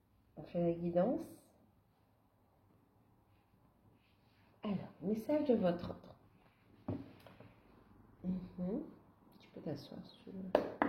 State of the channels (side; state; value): both; identical; correlation 1.00